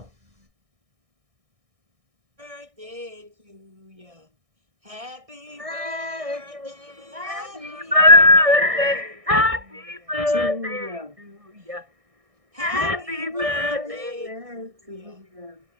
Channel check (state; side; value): late; left; 1.6 ms